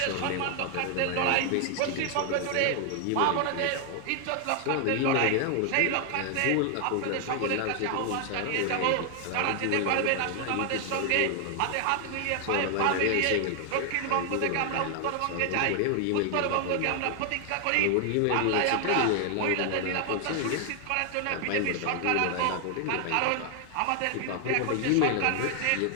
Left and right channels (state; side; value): different; both; correlation 0.00